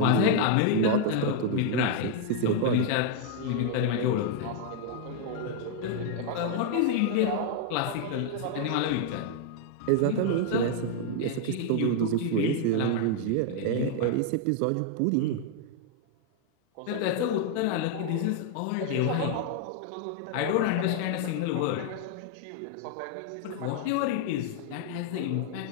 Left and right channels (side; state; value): both; different; correlation 0.00